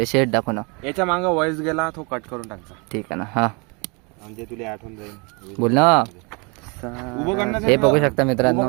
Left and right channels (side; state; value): left; quieter; 30.9 dB